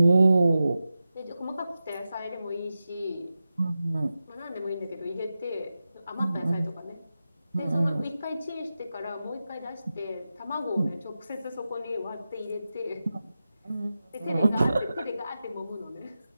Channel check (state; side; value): inverted; both; correlation -0.92